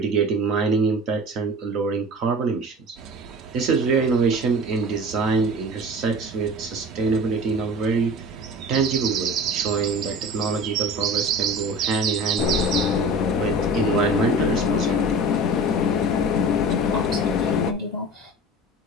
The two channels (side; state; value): both; normal; correlation 0.37